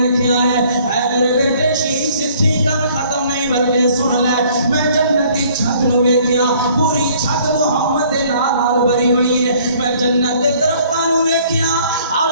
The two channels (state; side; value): inverted; both; correlation -0.58